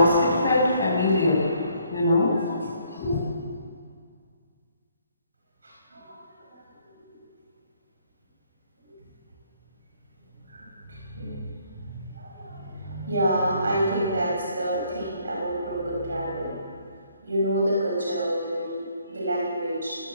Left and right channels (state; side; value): inverted; both; correlation -0.67